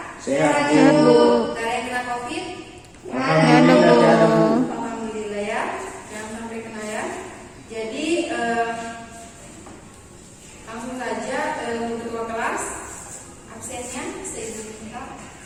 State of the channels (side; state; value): both; identical; correlation 1.00